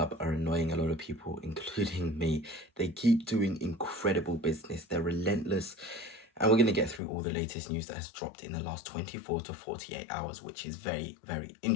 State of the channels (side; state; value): right; drops out; at 7.0 s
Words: are annoying a lot of people, including me. They keep doing incredible business. They're relentless. And we're going to get through all the latest news that has dropped in the last 24 to 48 hours, which is very, very